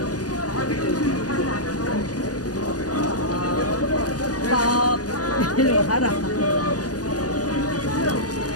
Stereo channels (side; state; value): right; late; 0.67 ms